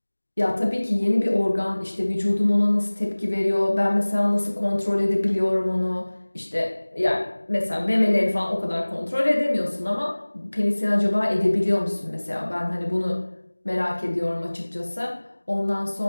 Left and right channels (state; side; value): inverted; both; correlation -1.00